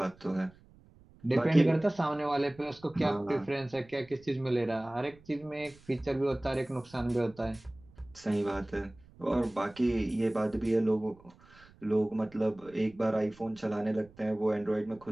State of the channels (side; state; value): right; noise; rumble, 26 dB below the sound